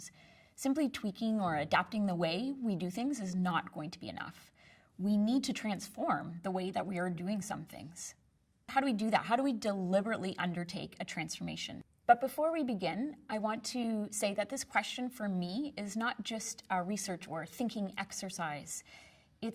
simply tweaking or adapting the way we do things is not going to be enough. We need to transform the way that we are doing some things. How do we do that? How do we deliberately undertake a transformation? But before we begin, I want to say that this question for me is not just a research or thinking exercise.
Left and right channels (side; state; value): both; identical; correlation 1.00